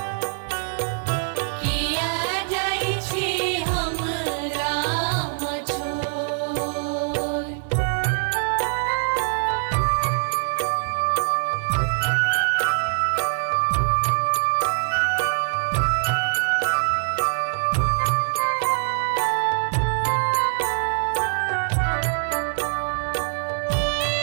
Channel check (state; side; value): silent; left; digital silence